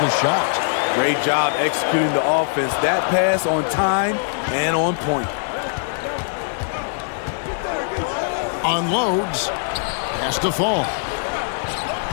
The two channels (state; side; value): silent; right; digital silence